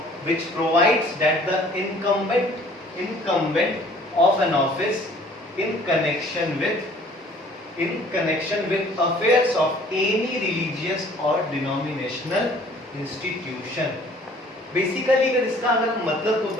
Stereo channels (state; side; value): normal; both; correlation 0.54